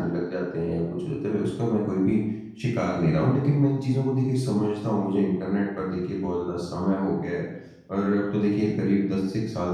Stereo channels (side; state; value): both; identical; correlation 1.00